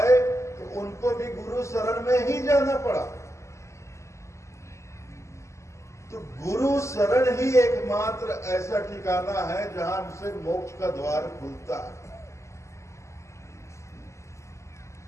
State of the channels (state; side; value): late; right; 0.14 ms